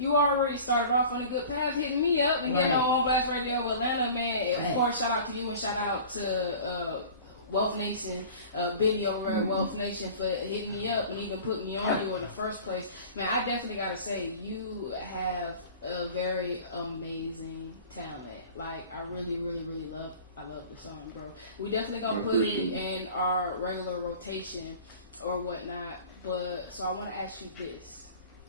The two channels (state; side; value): inverted; both; correlation -0.42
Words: already started off on a good path, hitting me up and getting on Blast Radio Atlanta, man. Of course, shout out to you and shout out to Wealth Nation, Biddy over at Wealth Nation for hitting me up and even putting me on you in the first place. Man, I definitely gotta say, you have a very amazing talent. Like, I really, really, really love the song, bro. We definitely gonna put it in our regular rotation or whatnot. But so I want to ask you this: